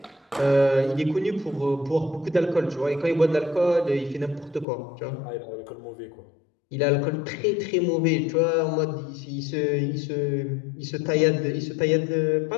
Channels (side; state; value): right; drops out; at 4.7 s